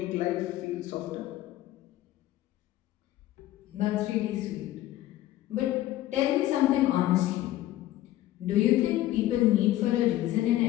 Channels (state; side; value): quieter; right; 14.7 dB